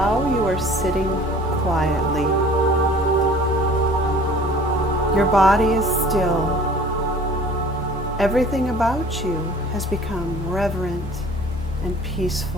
you are sitting quietly. Your body is still. Everything about you has become reverent and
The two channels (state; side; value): normal; both; correlation 0.48